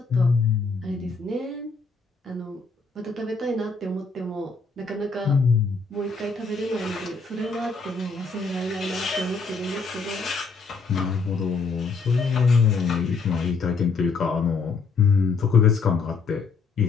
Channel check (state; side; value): quieter; right; 4.5 dB